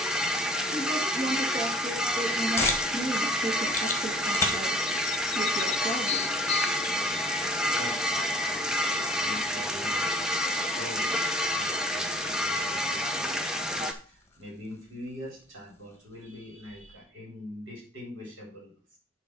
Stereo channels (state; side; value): normal; both; correlation 0.52